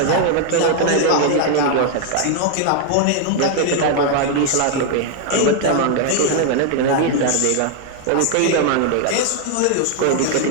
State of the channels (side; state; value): both; different; correlation 0.00